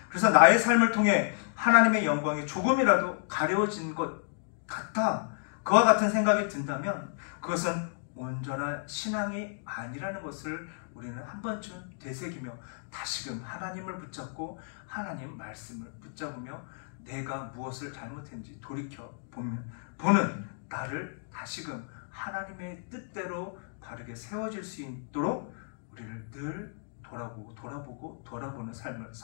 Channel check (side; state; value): right; silent; digital silence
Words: 그래서 나의 삶을 통해 하나님의 영광이 조금이라도 가려워진 것 같아 그와 같은 생각이 든다면 그것은 온전한 신앙이 아니라는 것을 우리는 한 번쯤 되새기며 다시금 하나님을 붙잡고 하나님 말씀을 붙잡으며 내가 무엇을 잘못했는지 돌이켜 보는 나를 다시금 하나님의 뜻대로 바르게 세워질 수 있도록 우리를 늘 돌아보는 삶을